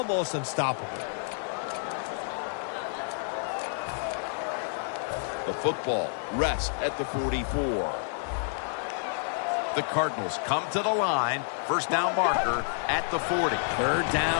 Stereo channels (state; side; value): silent; right; digital silence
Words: unstoppable. The football rests at the 44. The Cardinals come to the line. First down marker at the 40. Third